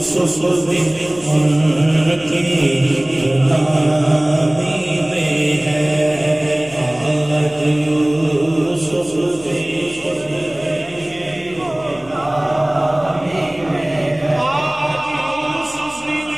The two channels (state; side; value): noise; left; hum, 23 dB below the sound